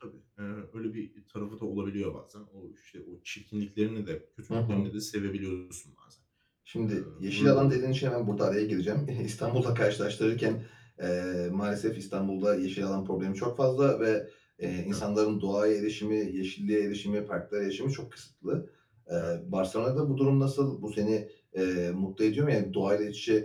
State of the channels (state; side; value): identical; both; correlation 1.00